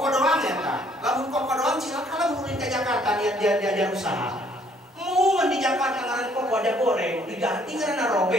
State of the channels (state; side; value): normal; both; correlation 0.63